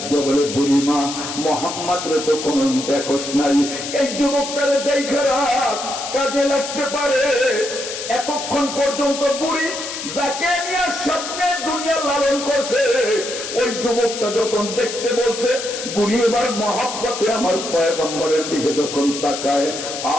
দিয়ে বলে, বুড়িমা মুহাম্মদ রে তো কোন দেখোস নাই, এই যুবকটারে দেখে রাখ, কাজে লাগতে পারে। এতক্ষণ পর্যন্ত বুড়ি যাকে নিয়ে স্বপ্নে দুনিয়া লালন করছে, ওই যুবকটা যখন দেখতে বলছে, বুড়ি এবার মহব্বতে আমার পয়গম্বরের দিকে যখন তাকায়,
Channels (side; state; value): left; noise; hiss, 7 dB below the sound